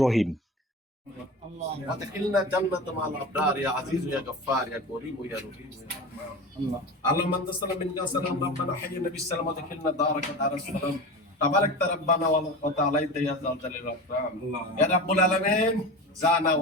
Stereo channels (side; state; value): both; normal; correlation 0.29